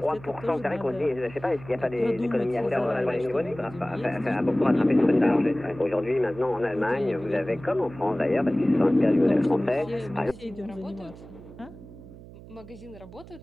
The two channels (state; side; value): noise; right; hum, 18 dB below the sound